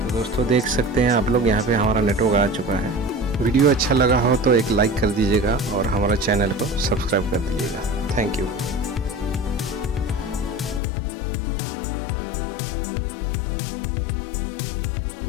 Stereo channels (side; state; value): right; drops out; at 10.8 s